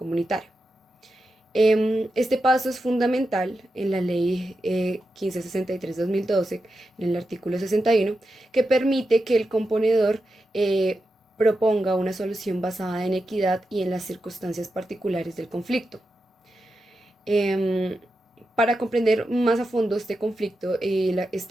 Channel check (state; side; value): normal; both; correlation 0.89